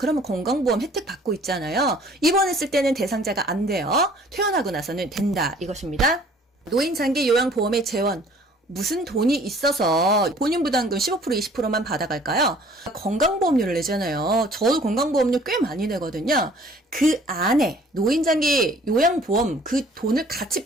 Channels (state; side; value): normal; both; correlation 0.54